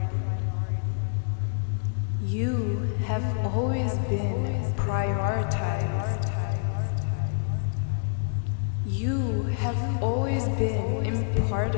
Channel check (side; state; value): right; silent; digital silence